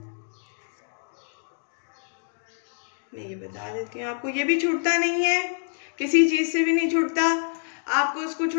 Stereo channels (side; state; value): right; silent; digital silence